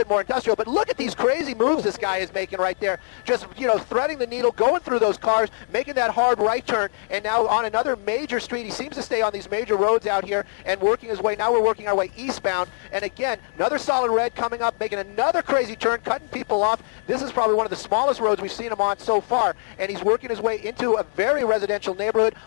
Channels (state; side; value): silent; right; 60 dB below the other